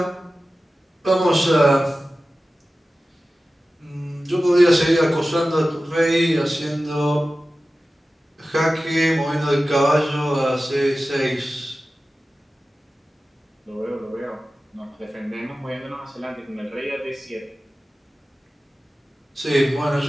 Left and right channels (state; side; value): normal; both; correlation 0.95